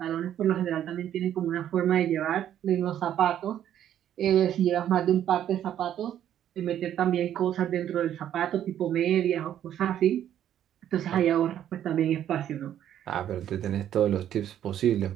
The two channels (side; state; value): left; quieter; 10.7 dB